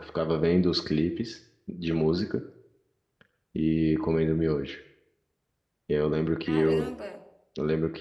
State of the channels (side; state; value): both; identical; correlation 1.00